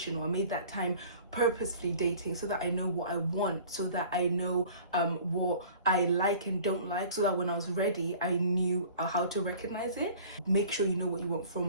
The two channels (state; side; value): inverted; both; correlation -0.47